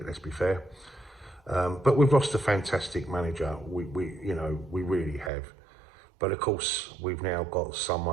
Let's be fair. But we've lost a fantastic manager. We really have. But of course, we've now got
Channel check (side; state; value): left; drops out; at 5.3 s